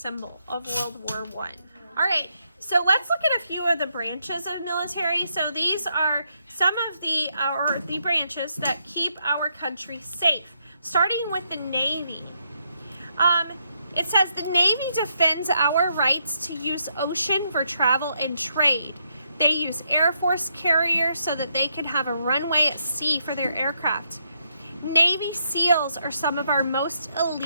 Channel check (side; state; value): both; inverted; correlation -0.77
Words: of World War I. All right, so let's look at a few of the branches of military. So these are some of the branches that keep our country safe, starting with the Navy. It says the Navy defends our rights to use ocean for travel and trade. They use Air Force carriers so that they can have a runway at sea for their aircraft. Navy SEALs are some of our most